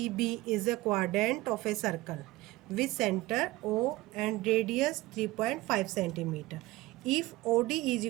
is a quadrant of a circle with center O and radius 3.5 centimeter. If OD is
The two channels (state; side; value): quieter; left; 18.7 dB